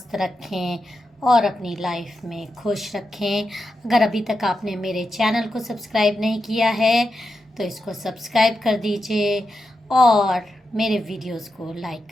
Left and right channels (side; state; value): both; normal; correlation 0.87